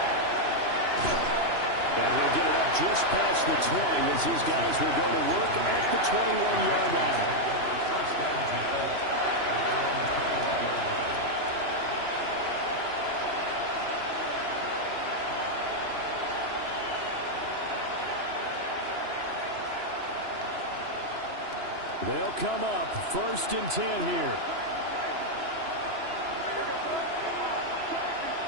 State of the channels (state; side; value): late; left; 2.9 ms